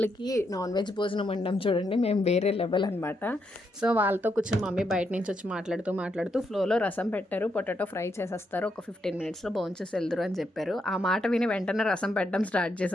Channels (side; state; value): both; normal; correlation 0.80